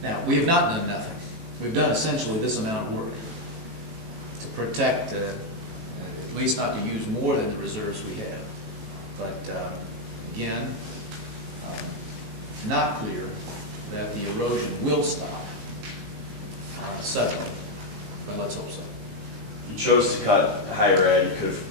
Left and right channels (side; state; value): left; late; 18 ms